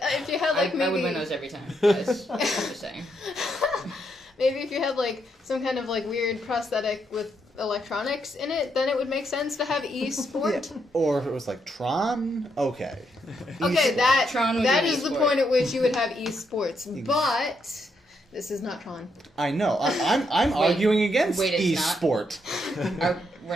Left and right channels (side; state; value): both; normal; correlation 0.78